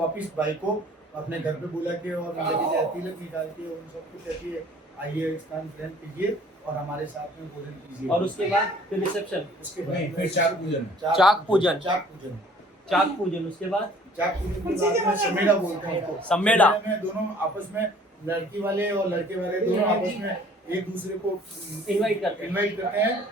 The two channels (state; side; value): normal; both; correlation 0.54